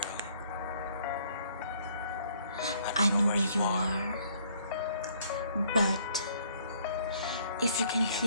I know where you are, but if you can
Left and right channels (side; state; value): both; inverted; correlation -0.63